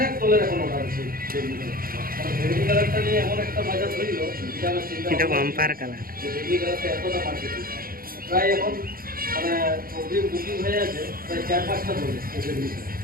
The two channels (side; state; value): left; late; 0.42 ms